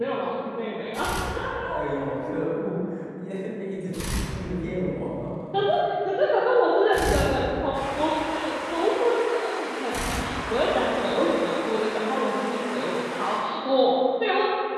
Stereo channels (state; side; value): identical; both; correlation 1.00